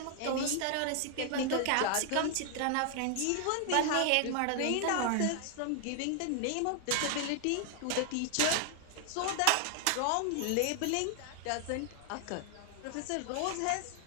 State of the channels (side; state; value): both; different; correlation 0.00